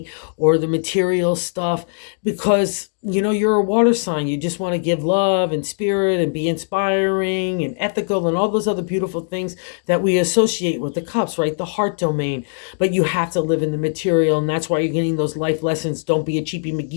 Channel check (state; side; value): silent; right; digital silence